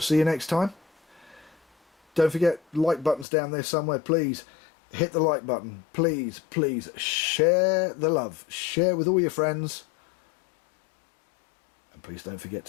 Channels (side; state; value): right; drops out; at 3.2 s